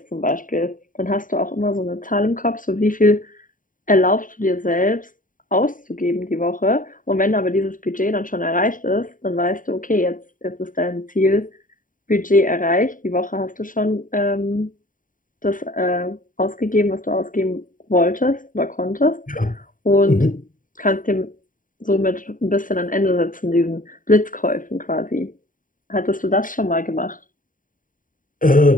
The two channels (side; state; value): right; late; 0.39 ms